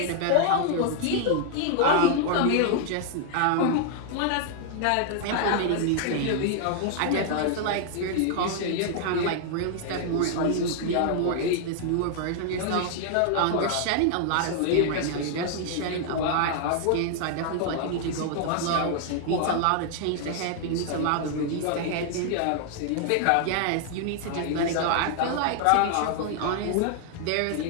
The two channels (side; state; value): both; different; correlation 0.00